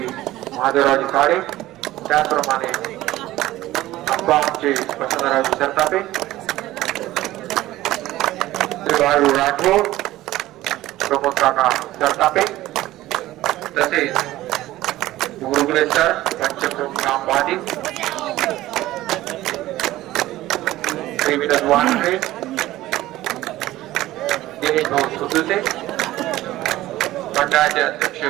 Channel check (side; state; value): left; quieter; 16.0 dB